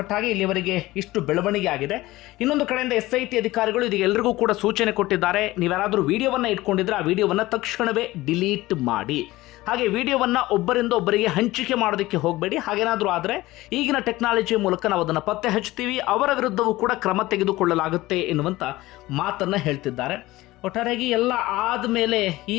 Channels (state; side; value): quieter; right; 18.3 dB